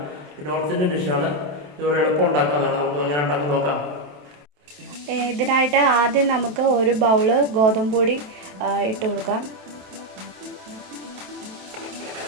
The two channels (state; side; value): late; left; 27 ms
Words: നോർത്ത് ഇന്ത്യൻ ഡിഷാണ്. ഇതുപോലെ എളുപ്പം ഉണ്ടാക്കാവുന്നതാണ്. നമുക്ക് എങ്ങനെ ഉണ്ടാക്കി നോക്കാം. ഇതിനായിട്ട് ആദ്യം നമുക്ക് ഒരു ബൗള് ഗോതമ്പ് പൊടി ഇട്ട് കൊടുക്കാം.